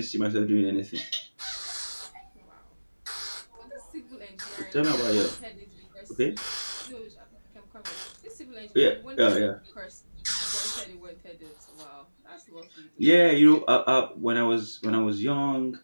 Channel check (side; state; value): both; inverted; correlation -1.00